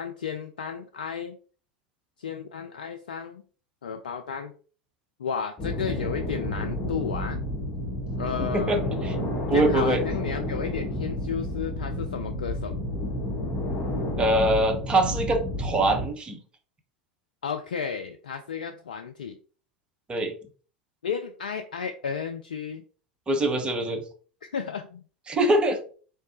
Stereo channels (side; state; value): both; normal; correlation 0.27